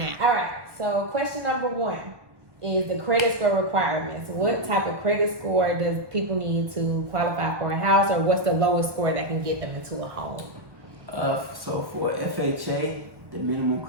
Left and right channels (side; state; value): left; late; 1.1 ms